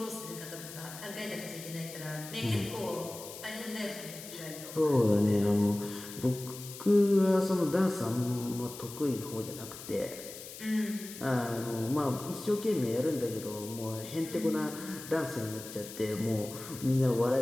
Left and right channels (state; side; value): noise; left; hiss, 13 dB below the sound